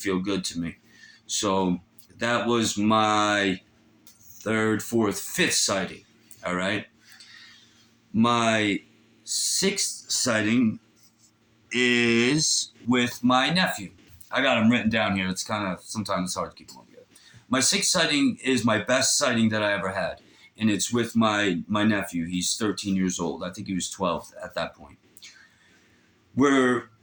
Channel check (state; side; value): identical; both; correlation 1.00